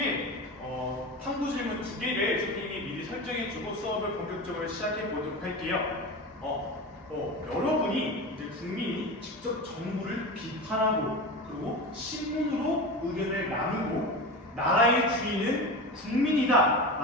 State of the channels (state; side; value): normal; both; correlation 0.26